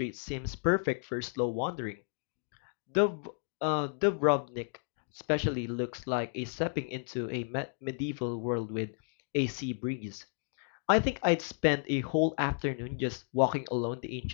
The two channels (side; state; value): right; silent; 56 dB below the other